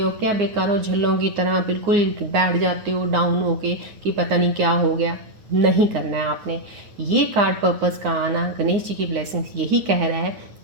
क्या बेकारों झल्लों की तरह बिल्कुल बैठ जाते हो डाउन होके कि पता नहीं क्या हो गया। नहीं करना है आपने। ये कार्ड पर्पस का आना, गणेश जी की ब्लेसिंग्स यही कह रहा है,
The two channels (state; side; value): late; left; 9.6 ms